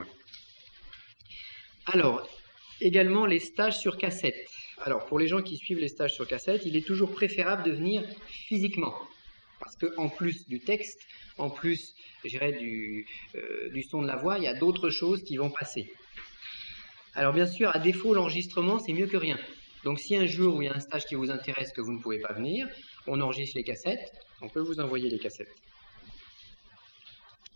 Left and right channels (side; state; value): both; inverted; correlation -1.00